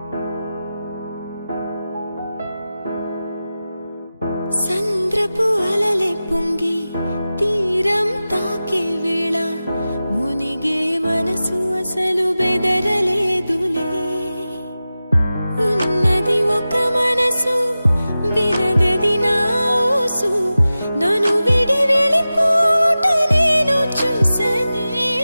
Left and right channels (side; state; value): both; inverted; correlation -0.95